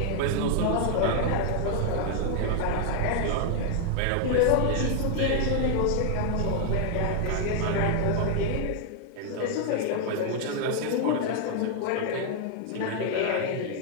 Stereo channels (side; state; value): both; different; correlation 0.00